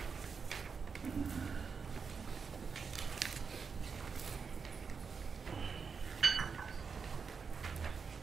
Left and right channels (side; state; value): left; quieter; 5.5 dB